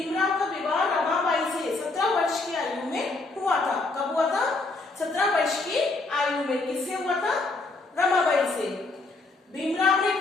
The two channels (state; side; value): quieter; right; 3.4 dB